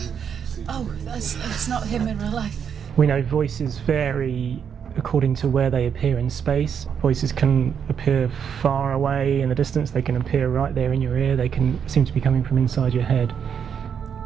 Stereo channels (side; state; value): left; quieter; 7.5 dB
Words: Oh, that's not him in real life. We know voices vary according to where they appear in space. Voices can appear far away in the distance, they can appear right there in your ear, they can seem to be coming from inside your head.